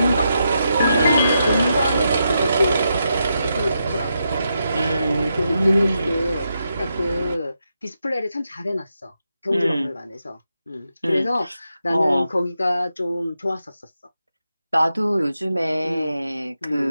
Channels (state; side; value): inverted; both; correlation -0.84